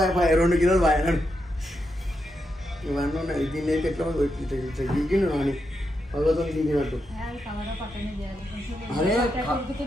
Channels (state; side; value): normal; both; correlation 0.84